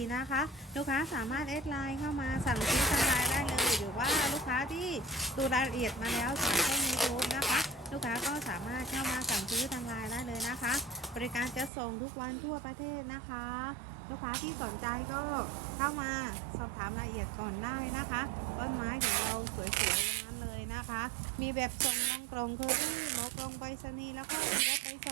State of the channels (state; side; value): drops out; left; at 11.7 s